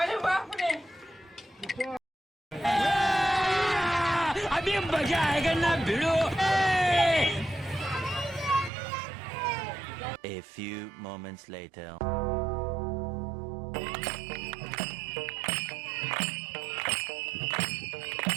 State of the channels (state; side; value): drops out; left; at 8.7 s